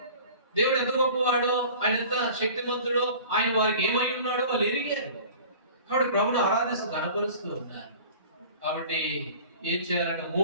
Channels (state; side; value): inverted; both; correlation -0.44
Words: దేవుడు ఎంత గొప్పవాడో, ఆయన ఎంత శక్తిమంతుడో, ఆయన వారికి ఏమై ఉన్నాడో వాళ్ళు ఎరిగారు. కాబట్టి ప్రభుని ఆరాధిస్తూ కనపరుస్తూ ఉన్నారు. కాబట్టి ఏం చేయాలంటే